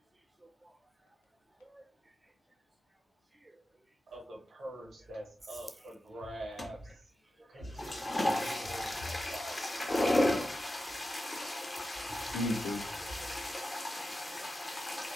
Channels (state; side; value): normal; both; correlation 0.92